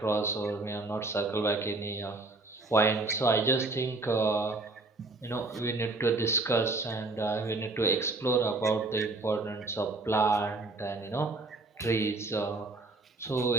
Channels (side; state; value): left; quieter; 3.2 dB